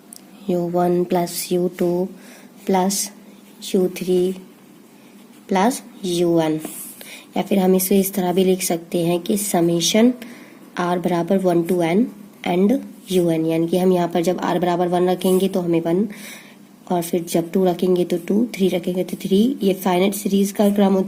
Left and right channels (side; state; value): both; identical; correlation 1.00